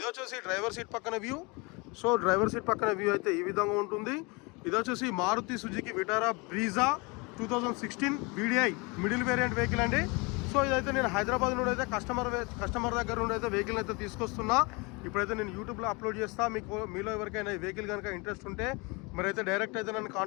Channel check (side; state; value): right; quieter; 28.1 dB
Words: వచ్చేసి డ్రైవర్ సీట్ పక్కన వ్యూ. సో డ్రైవర్ సీట్ పక్కన వ్యూ అయితే ఈ విధంగా ఉంటుంది. ఇది వచ్చేసి Maruti Suzuki Vitara Brezza 2016 VDI middle variant vehicle అండి. సో ఇదైతే నేను హైదరాబాద్ నుండి అయితే కస్టమర్ దగ్గర నుండి అయితే వెహికల్ అయితే తీసుకొస్తున్నా. ఇప్పుడైతే నేను యూట్యూబ్లో అప్లోడ్ చేస్తా. మీలో ఎవరికైనా ఈ వెహికల్ కనుక ఇంట్రెస్ట్ ఉంటే మరైతే డైరెక్ట్ అయితే నన్ను